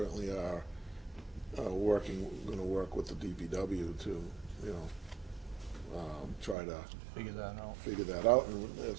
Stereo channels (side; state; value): left; drops out; at 6.6 s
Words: are, gonna work with the DPW to, try to Figure that out. figure that out, and